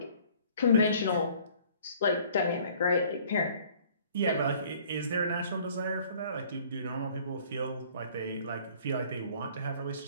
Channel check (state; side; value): inverted; both; correlation -0.55